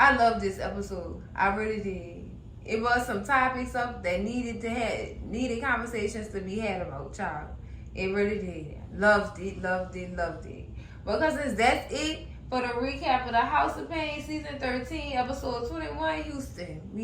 love this episode. I really did. It was some topics up that needed conversations to be had about, child. It really did. Loved it. But cousins, that's it for the recap of the House of Payne season 13, episode 21, Houston.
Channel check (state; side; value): identical; both; correlation 1.00